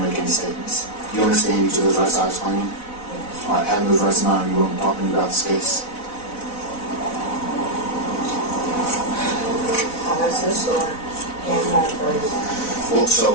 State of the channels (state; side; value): late; right; 4.0 ms